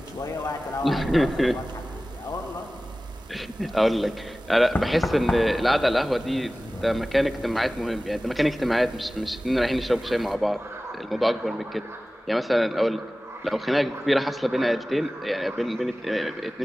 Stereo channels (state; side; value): normal; both; correlation 0.97